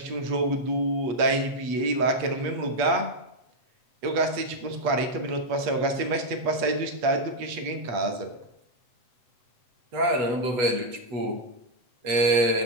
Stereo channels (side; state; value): left; late; 8.4 ms